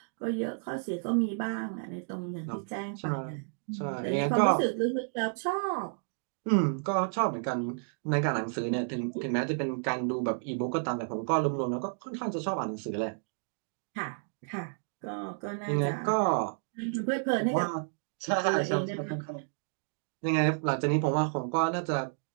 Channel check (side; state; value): left; silent; digital silence